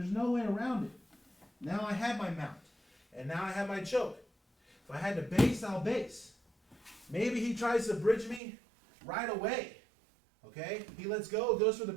no way around it. Now I have my mount. And now I have my choke. If I had to base, I'll base. Maybe he tries to bridge me right away. Okay? He lets go, goes for the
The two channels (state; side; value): drops out; left; at 8.4 s